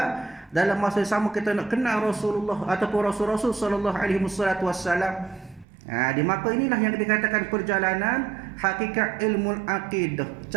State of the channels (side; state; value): left; drops out; at 5.7 s